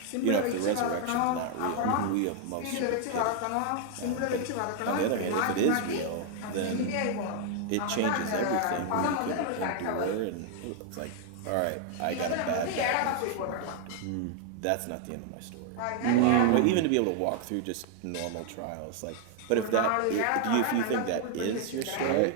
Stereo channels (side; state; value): both; different; correlation 0.00